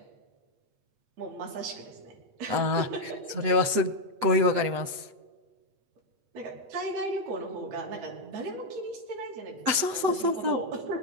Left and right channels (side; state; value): left; late; 8.4 ms